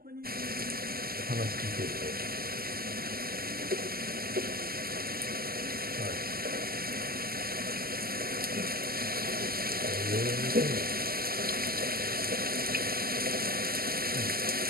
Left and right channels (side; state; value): left; late; 0.43 ms